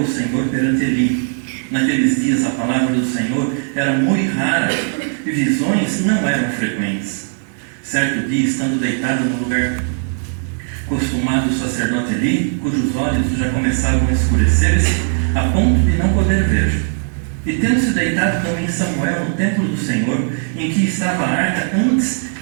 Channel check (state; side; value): silent; left; digital silence